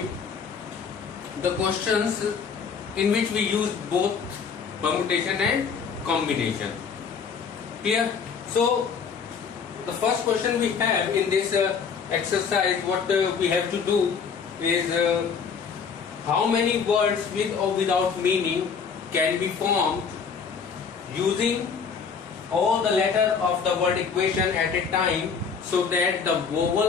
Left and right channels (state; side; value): quieter; right; 6.1 dB